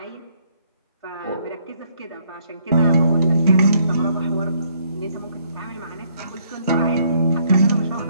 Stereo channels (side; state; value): both; inverted; correlation -0.68